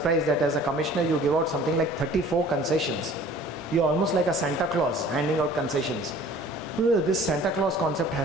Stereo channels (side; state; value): both; normal; correlation 0.49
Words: that as a commissioner, you give out something like 34 concessions. You're almost like a Santa Claus handing out concessions. This Santa Claus concept